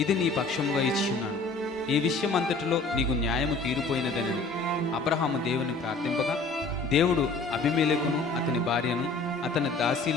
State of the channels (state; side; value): quieter; right; 3.6 dB